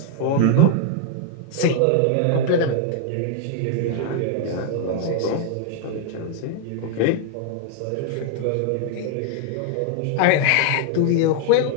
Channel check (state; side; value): different; both; correlation 0.00